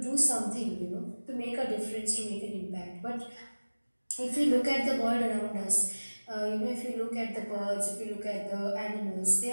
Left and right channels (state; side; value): inverted; both; correlation -1.00